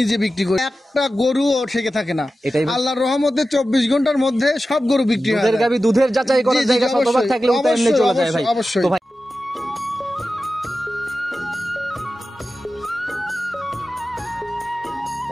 বিক্রি করি। একটা গরু ও থেকে থাকে না, আল্লাহর রহমতে 24 ঘন্টার মধ্যে সব গরু বিক্রি হয়। দুধের গাবি দুধের যাচাই করার জায়গা শতভাগ থাকলে ওটা এমনি চলে যায় ভাই। অবশ্যই। তো ভাই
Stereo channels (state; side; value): normal; both; correlation 0.93